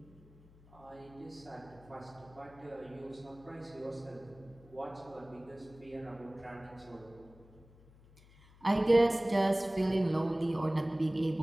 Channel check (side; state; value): left; noise; hum, 24 dB below the sound